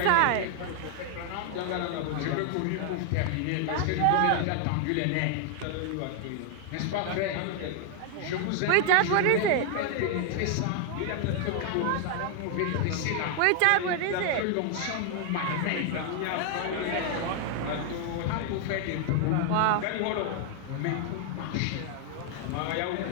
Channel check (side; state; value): both; different; correlation 0.00